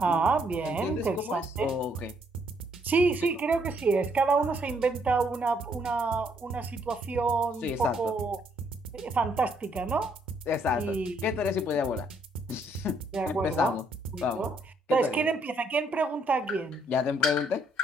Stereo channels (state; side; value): normal; both; correlation 0.70